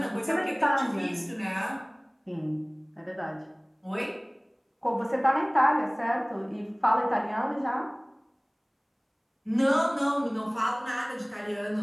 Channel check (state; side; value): identical; both; correlation 1.00